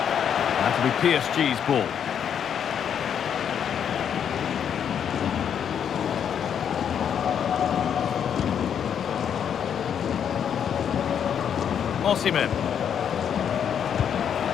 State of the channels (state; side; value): quieter; right; 8.3 dB